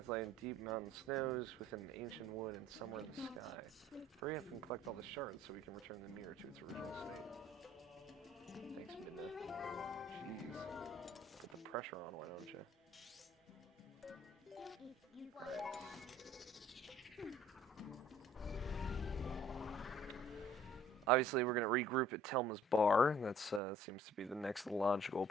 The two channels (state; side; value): normal; both; correlation 0.56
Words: lie in deep mountain snows, within an ancient wood, and somewhere in the sky. Hurry up and collect all the shards so we can return the mirror to its original state. Thanks, Midna. Jeez. Put the pressure on, why don't you? Alright. Obviously, we're going to regroup at Telma's bar. That seems to be the next logical